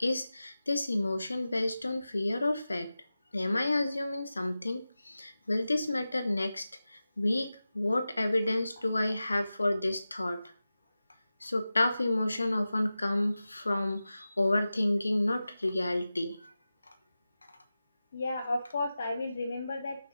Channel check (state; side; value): inverted; both; correlation -0.94